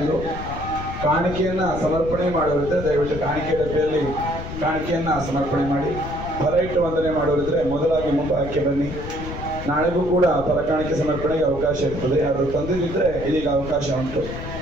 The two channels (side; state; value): left; noise; rumble, 9 dB below the sound